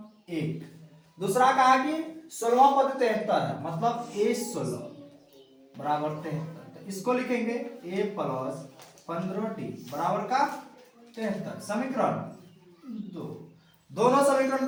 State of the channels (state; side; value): identical; both; correlation 1.00